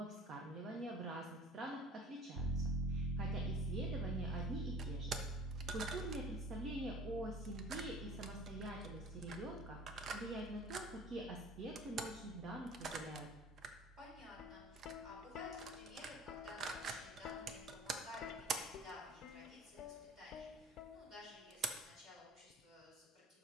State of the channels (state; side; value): normal; both; correlation 0.46